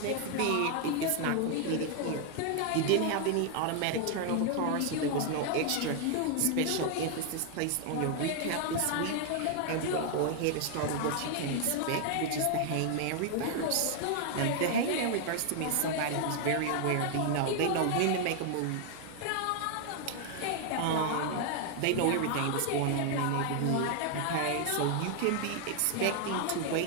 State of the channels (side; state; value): both; different; correlation 0.00